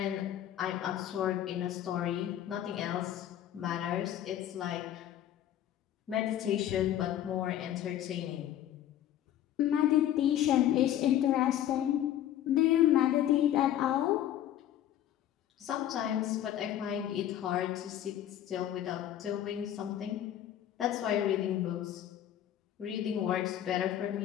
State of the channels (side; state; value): right; quieter; 11.5 dB